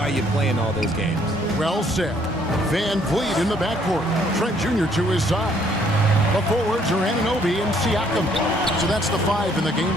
you play in all those games. Well said. Van Vliet in the backcourt. Trent Jr. to his side. The forwards are Anunoby and Siakam. So that's the 5 in the game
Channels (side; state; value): both; normal; correlation 0.65